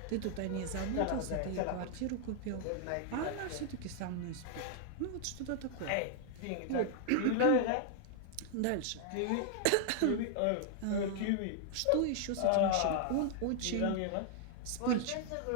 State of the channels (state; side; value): different; both; correlation 0.00